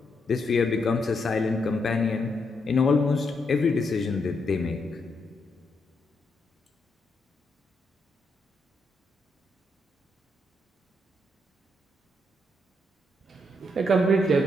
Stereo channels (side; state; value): both; normal; correlation 0.79